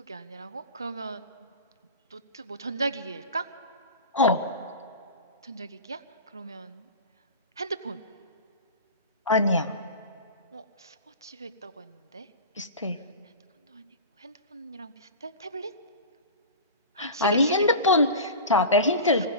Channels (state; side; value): inverted; both; correlation -0.31